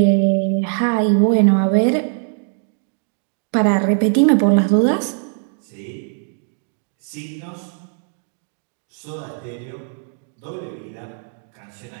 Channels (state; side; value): silent; left; 61 dB below the other